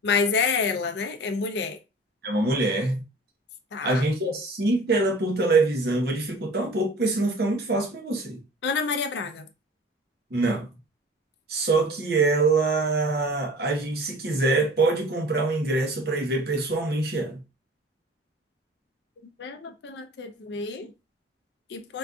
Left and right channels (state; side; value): normal; both; correlation 0.44